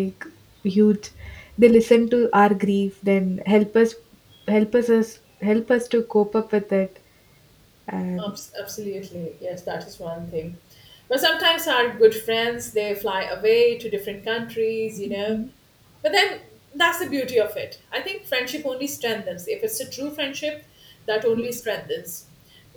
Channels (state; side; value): identical; both; correlation 1.00